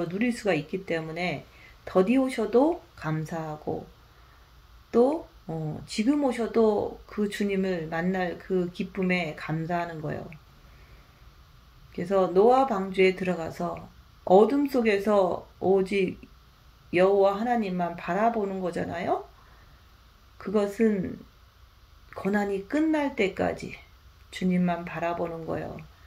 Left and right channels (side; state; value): both; identical; correlation 1.00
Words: 누릴 수가 있기 때문에 더디 오셔도 감사하고 또 지금 오셔도 그 주님을 만날 그 기쁨에 감사하는 거예요. 그래서 노아 방주에 들어가서 어둠 속에서 오직 여호와 하나님만 바라보는 거잖아요. 그것은 고난이 끝날 때까지 주님만 바라보는 거예요.